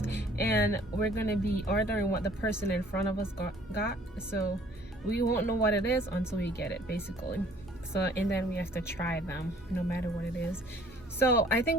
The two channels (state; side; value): normal; both; correlation 0.56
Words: and we're gonna be ordering what the person in front of us got. So we won't know what it is until we get it, basically. So, and then we have to try them no matter what it is. So I